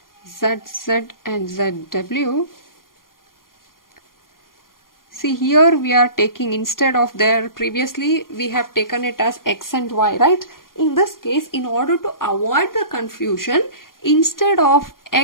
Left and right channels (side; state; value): right; late; 0.91 ms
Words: ZZ and ZW. See, here we are taking, instead of there previously we have taken it as X and Y, right? In this case, in order to avoid the confusion, instead of